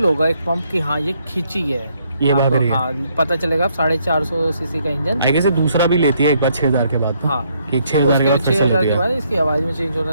होगा एक पंप की, हाँ ये खींची है, ये भाग आपको, रही है। हाँ पता चलेगा। 450 सीसी का इंजन। आई गेस दूसरा भी लेती है एक बार 6000 के बाद। हाँ, कि 6000 के बाद फिर से 6000 लेती के है, बाद इसकी आवाज़ में चेंज होना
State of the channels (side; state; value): both; inverted; correlation -0.71